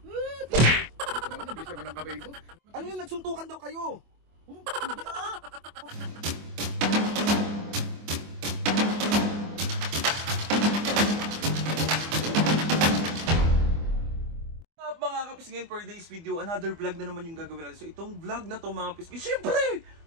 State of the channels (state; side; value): late; left; 24 ms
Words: naman, nabilis naman ang kamay mo. Ano yun, nagsuntukan daw kayo? Hindi ah. Mga kapisngin, for today's video, another vlog na naman yung gagawin natin. So itong vlog na to mga kapisngin, syempre,